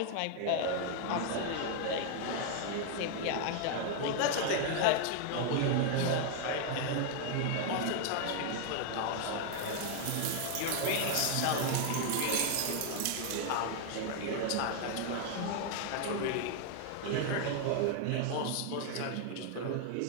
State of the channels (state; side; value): different; both; correlation 0.00